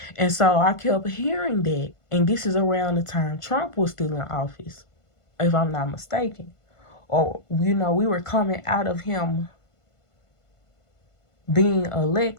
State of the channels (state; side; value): late; right; 1.5 ms